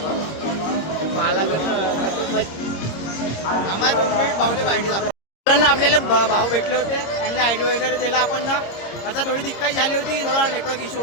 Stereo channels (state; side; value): late; right; 26 ms